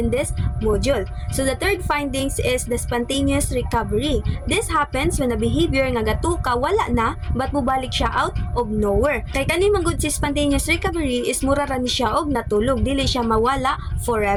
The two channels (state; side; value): identical; both; correlation 1.00